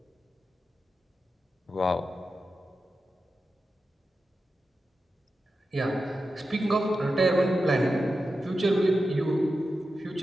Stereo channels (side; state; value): both; normal; correlation 0.91